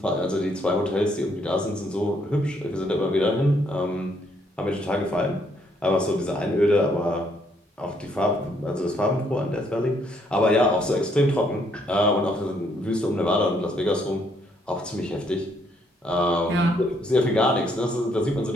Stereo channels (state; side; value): normal; both; correlation 0.70